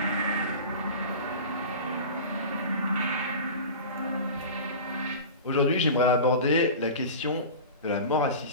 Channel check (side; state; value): both; inverted; correlation -0.33